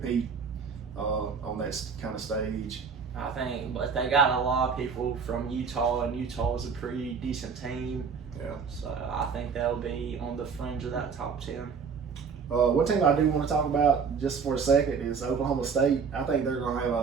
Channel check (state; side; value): quieter; left; 5.8 dB